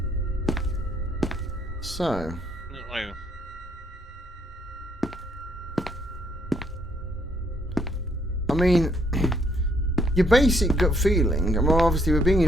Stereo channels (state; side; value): normal; both; correlation 0.69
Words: So, mean, your basic gut feeling, I mean, obviously we're being